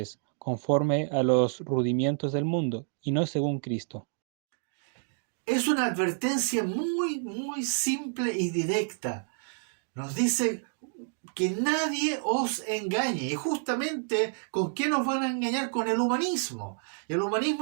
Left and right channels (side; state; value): left; silent; 58 dB below the other